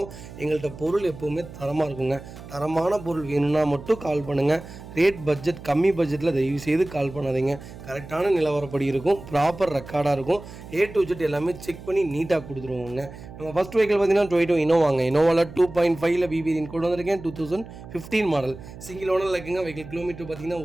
எங்கள்கிட்ட பொருள் எப்போவுமே தரமாக இருக்குங்க. தரமான பொருள் வேணும்னா மட்டும் கால் பண்ணுங்கள். ரேட் பட்ஜெட் கம்மி பட்ஜெட்டில் தயவு செய்து கால் பண்ணாதீங்க. கரெக்டான நிலவரப்படி இருக்கும், ப்ராப்பர் ரெக்கார்டாக இருக்கும். A to Z எல்லாமே செக் பண்ணி நீட்டாக கொடுத்துருவோங்க. நம்ம ஃபஸ்ட் வெஹிக்கிள் பார்த்தீங்கன்னா டொயோட்டோ இனோவாங்க. இனோவாவில் 2.5 BVN கொண்டு வந்திருக்கேன். 2015 மாடல் சிங்கிள் ஓனரில் இருக்குங்க. வெஹிக்கிள் கிலோமீட்டர் பார்த்தீங்கன்னா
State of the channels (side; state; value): right; noise; hum, 15 dB below the sound